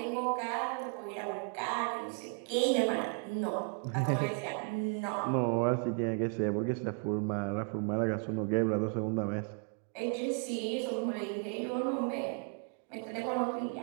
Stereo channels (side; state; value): left; quieter; 40.0 dB